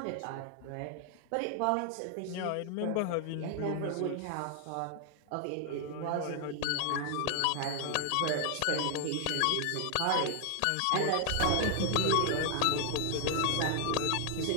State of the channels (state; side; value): different; both; correlation 0.00